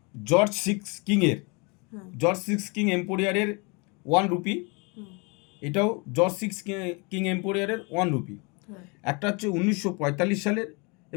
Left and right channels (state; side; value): quieter; right; 30.6 dB